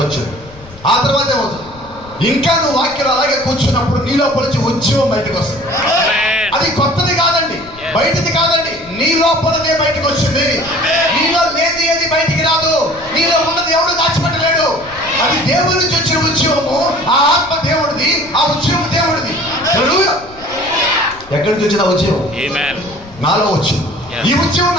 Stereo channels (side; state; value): left; noise; rumble, 21 dB below the sound